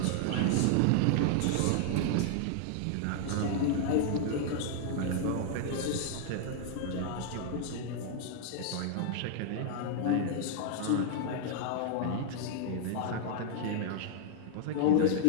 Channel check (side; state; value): both; different; correlation 0.00